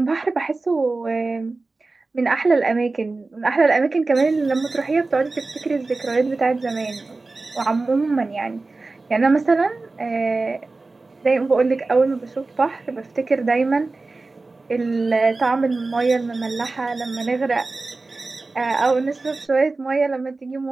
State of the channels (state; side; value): quieter; left; 3.5 dB